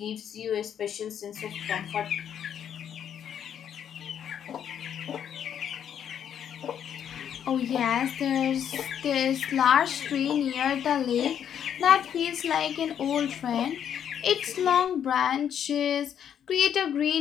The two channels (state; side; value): quieter; right; 9.0 dB